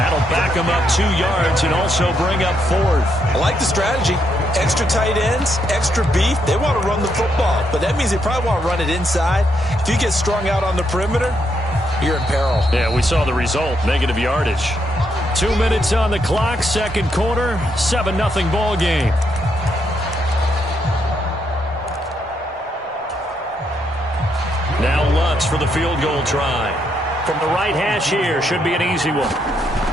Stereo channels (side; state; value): both; normal; correlation 0.77